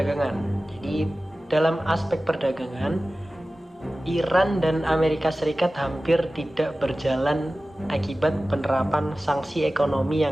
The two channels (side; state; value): both; normal; correlation 0.96